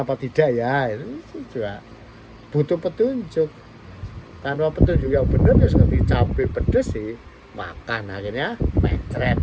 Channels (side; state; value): both; identical; correlation 1.00